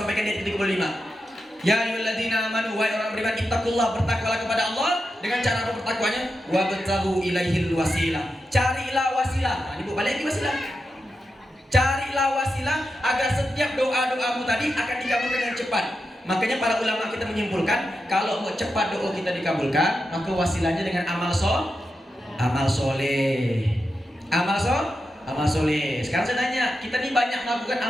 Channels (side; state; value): both; normal; correlation 0.88